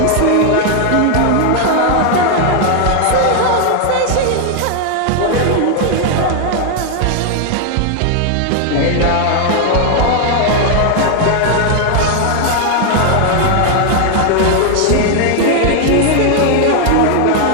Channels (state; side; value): different; both; correlation 0.00